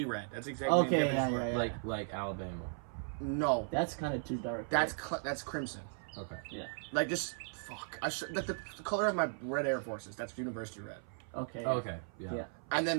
red. That's exactly okay. the difference. Yeah. Like Alabama. No. That's kind of too dark. That's crimson. Okay. Yeah. Just fuck. The color of my red Air Forces. That's university red. Okay. Okay. Yeah. And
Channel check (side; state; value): left; silent; 53 dB below the other